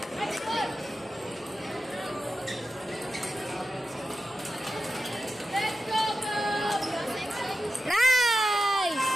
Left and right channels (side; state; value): both; normal; correlation 0.91